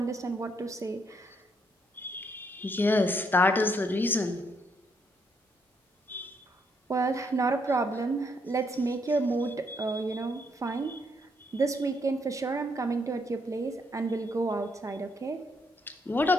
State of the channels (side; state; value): both; normal; correlation 0.73